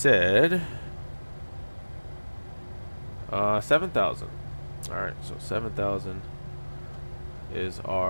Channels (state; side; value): inverted; both; correlation -1.00